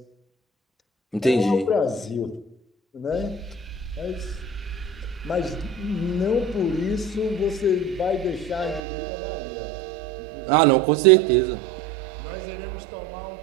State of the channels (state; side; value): drops out; left; at 8.8 s